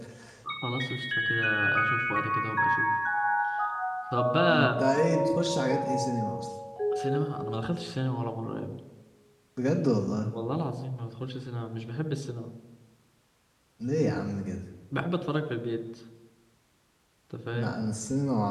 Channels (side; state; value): both; identical; correlation 1.00